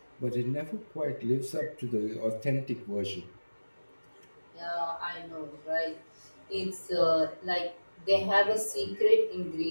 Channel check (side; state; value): both; inverted; correlation -1.00